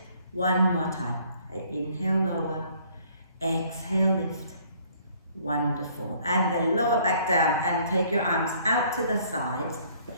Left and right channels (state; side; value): inverted; both; correlation -0.60